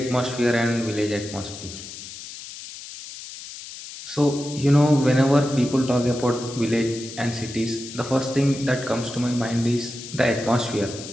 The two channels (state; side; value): noise; left; hiss, 13 dB below the sound